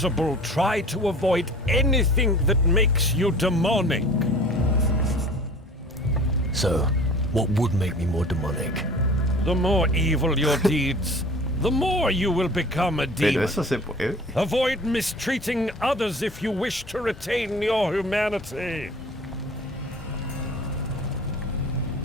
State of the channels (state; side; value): normal; both; correlation 0.44